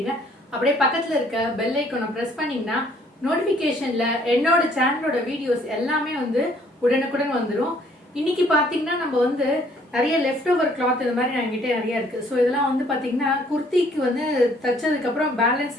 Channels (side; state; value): both; normal; correlation 0.61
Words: அப்படியே பக்கத்துல இருக்க பெல் ஐகானை பிரஸ் பண்ணீங்கன்னா நோட்டிபிகேஷன்ல என்னோட சேனலோட வீடியோஸ் எல்லாமே உடனுக்குடன் வந்துடும். இன்னைக்கு பாத்தீங்கன்னா நம்ம நிறைய லெஃப்ட் ஓவர் கிளாத் இந்த மாதிரி என்கிட்ட நிறைய இருக்கு. ஸோ இதெல்லாம் பாத்தீங்கன்னா குர்த்திக்கு தச்சதுக்கு அப்புறம் பேலன்ஸ்